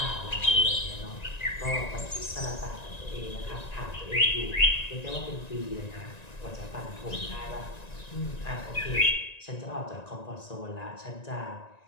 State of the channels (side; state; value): right; late; 1.9 ms